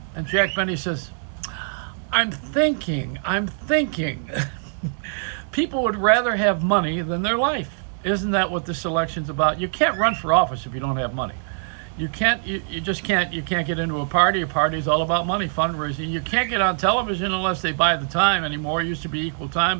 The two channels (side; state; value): left; silent; digital silence